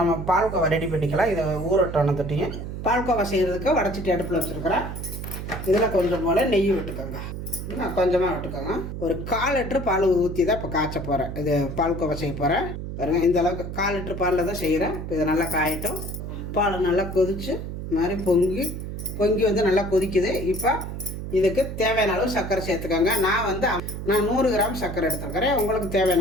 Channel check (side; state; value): right; noise; hum, 7 dB below the sound